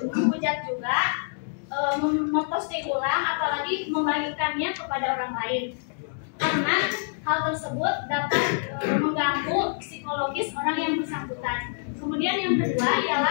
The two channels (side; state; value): right; silent; 61 dB below the other